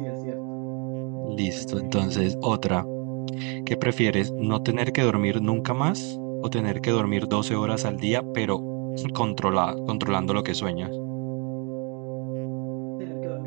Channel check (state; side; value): quieter; left; 34.4 dB